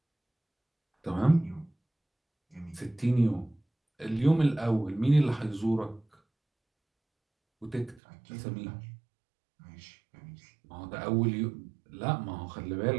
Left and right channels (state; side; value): drops out; left; at 8.0 s